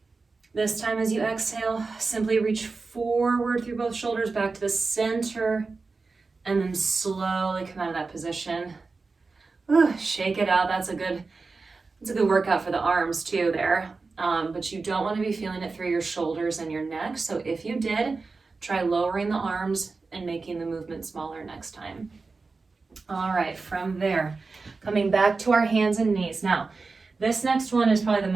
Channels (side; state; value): left; quieter; 4.1 dB